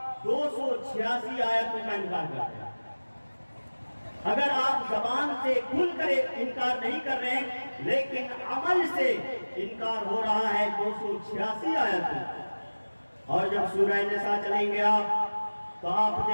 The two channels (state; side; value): inverted; both; correlation -1.00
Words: 286 آیتوں کا انکار کرتے ہیں۔ اگر آپ زبان سے کھل کر انکار نہیں کر رہے ہیں لیکن عمل سے انکار ہو رہا ہے 286 آیتوں۔ اور جب سورہ نساء چلیں گے آپ تو آپ